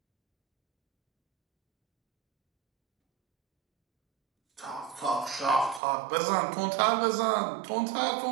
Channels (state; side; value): drops out; left; at 5.8 s